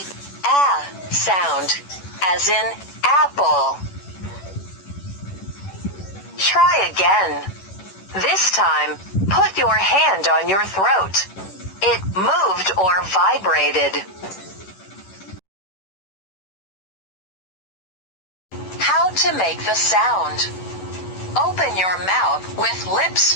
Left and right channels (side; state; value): right; late; 11 ms